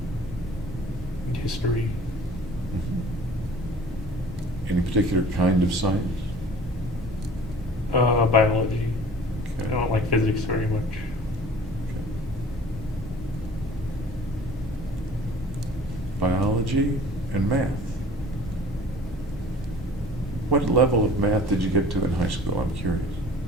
and history. Any particular kind of science? Biology. Okay. I don't like physics very much. Okay. Biology and math. What level of math did you get to in high school? I'm curious.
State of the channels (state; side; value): normal; both; correlation 0.47